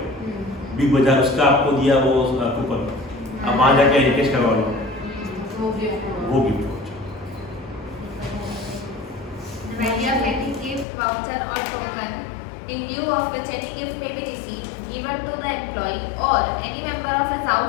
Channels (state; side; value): drops out; right; at 10.9 s